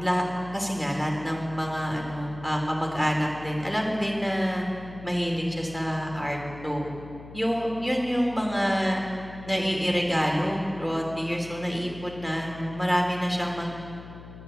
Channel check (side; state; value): left; noise; hum, 15 dB below the sound